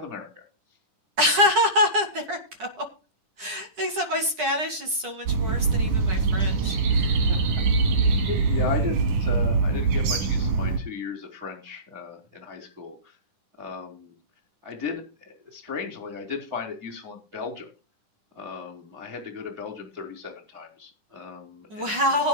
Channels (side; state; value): left; late; 9.9 ms